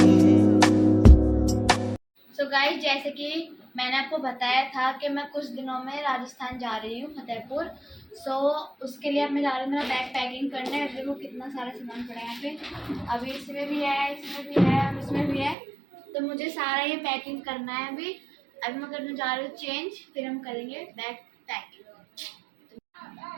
सो गाइस, जैसे कि मैंने आपको बताया था कि मैं कुछ दिनों में राजस्थान जा रही हूँ, फतेहपुर। उसके लिए अब मैं जा रही हूँ मेरा बैग पैकिंग करने। अब देखो कितना सारा सामान पड़ा है यहाँ पे। अभी इसमें भी है, इसमें भी है और इसमें भी है। तो मुझे सारा ये पैकिंग करना है अभी मैं करने जा रही हूँ चेंज, फिर हम करेंगे बैग पैकिंग।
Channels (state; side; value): drops out; left; at 15.6 s